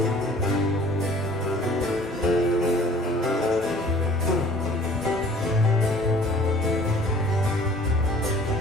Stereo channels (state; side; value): normal; both; correlation 0.52